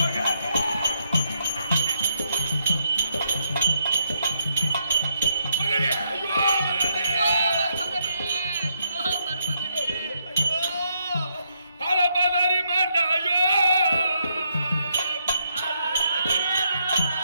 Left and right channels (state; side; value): inverted; both; correlation -0.77